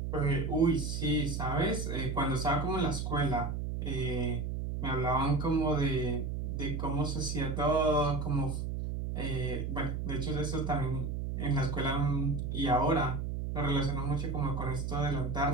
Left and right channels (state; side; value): noise; right; hum, 3 dB below the sound